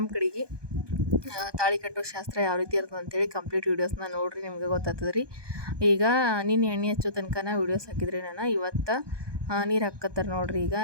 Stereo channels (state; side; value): late; left; 1.2 ms